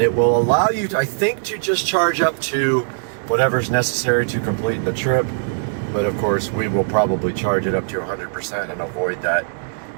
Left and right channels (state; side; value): silent; left; digital silence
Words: it will allow you to, I think, to just charge up to whatever's necessary to complete the trip. But of course we will probably charge it up to 100% and avoid that